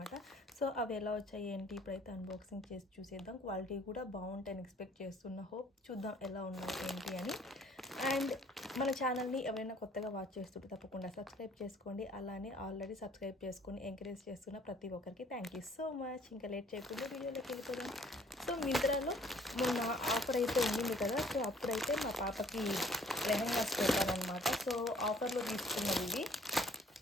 సో అవి ఎలా వచ్చాయి ఏంటి ఇప్పుడైతే అన్బాక్సింగ్ చేసి చూసేద్దాం. క్వాలిటీ కూడా బాగుంటాయని ఎక్స్పెక్ట్ చేస్తున్నా. హోప్ చూద్దాం ఎలా ఉన్నాయి ఏంటి అని. అండ్ మన ఛానల్ని ఎవరైనా కొత్తగా వాచ్ చేస్తుంటే తప్పకుండా సబ్స్క్రైబ్ చేసుకోండి. అలానే ఆల్రెడీ సబ్స్క్రైబ్ చేసుకొని ఎంకరేజ్ చేస్తున్న ప్రతి ఒక్కరికి థ్యాంక్ యూ సో మచ్. ఇంకా లేట్ చేయకుండా వీడియోలోకి వెళ్ళిపోదాం. సో మింత్రాలో మొన్న ఆఫర్ అయితే ఉండింది కదా, సో అప్పుడైతే మా పాపకి లెహెంగాస్ పెట్టారనమాట. సో ఆఫర్లో తీసుకున్నది ఇది.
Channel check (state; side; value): normal; both; correlation 0.57